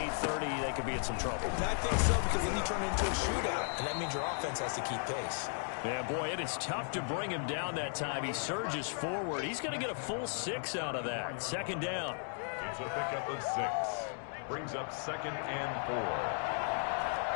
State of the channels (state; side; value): silent; right; 54 dB below the other